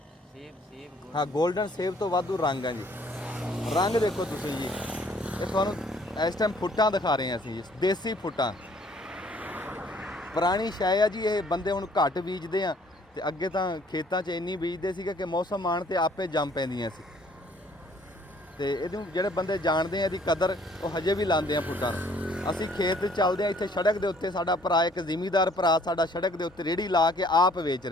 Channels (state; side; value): normal; both; correlation 0.60